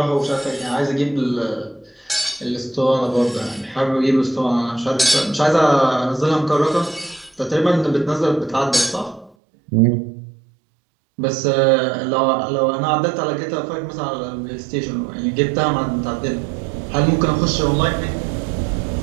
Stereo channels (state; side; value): drops out; left; at 9.3 s